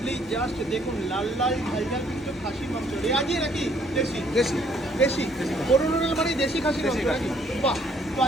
জাস্ট দেখুন লাল লাল ঝাল ঝাল কিন্তু খাসির মাংস রেয়াজি নাকি দেশি? দেশি দেশি দেশি। বরুণ হোটেল মানে দেশি খাসির মাংস দেশি খাসি। নাকি? বাহ, তো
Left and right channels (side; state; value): both; normal; correlation 0.64